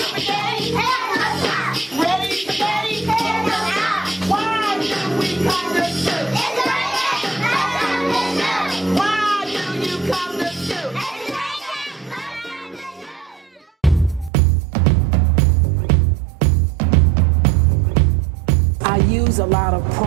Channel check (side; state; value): left; drops out; at 14.3 s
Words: A lot of